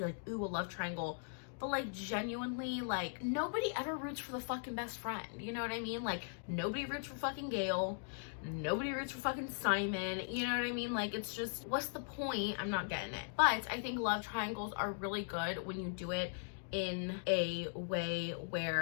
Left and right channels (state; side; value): silent; right; digital silence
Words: like, ooh, a love triangle. But like, genuinely, like, nobody ever roots for the fucking best friend. You know what I mean? Like, nobody roots for fucking Gail. Nobody roots for fucking Simon. You know what I mean? Like, it's just, what's the point? I'm not getting it. But I think love triangles are really good when you do it in a way